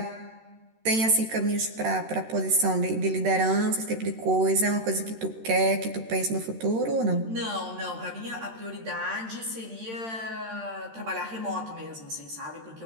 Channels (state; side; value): late; left; 13 ms